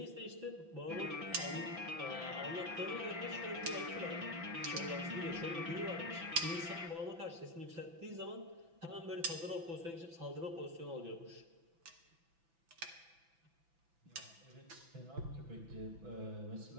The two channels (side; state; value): left; late; 6.0 ms